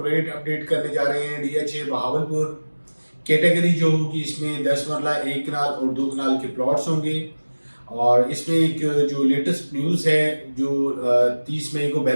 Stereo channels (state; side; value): inverted; both; correlation -1.00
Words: रेट अपडेट करने जा रहे हैं DH बहावलपुर। कैटेगरी जो होगी इसमें 10 मरला 1 कनाल और 2 कनाल के प्लॉट्स होंगे। और इसमें एक जो लेटेस्ट न्यूज़ है, जो 30 मई को